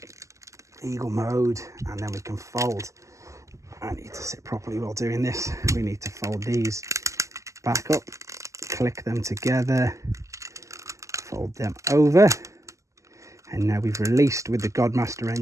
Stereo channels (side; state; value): left; late; 0.15 ms